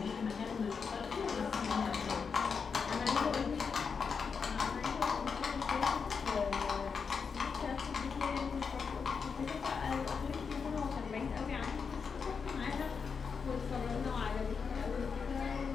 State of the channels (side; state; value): right; quieter; 5.7 dB